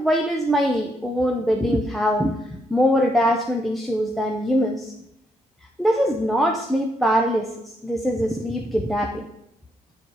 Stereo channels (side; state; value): both; normal; correlation 0.77